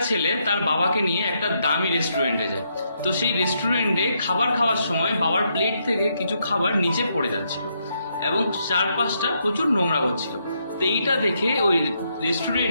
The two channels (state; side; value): inverted; both; correlation -0.78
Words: ছেলে তার বাবাকে নিয়ে একটা দামি রেস্টুরেন্টে যায়। তো সেই রেস্টুরেন্টে খাবার খাওয়ার সময় বাবার প্লেট থেকে কিছু খাবার নিচে পড়ে যাচ্ছিল এবং চারপাশটা প্রচুর নোংরা হচ্ছিল। তো এইটা দেখে ওই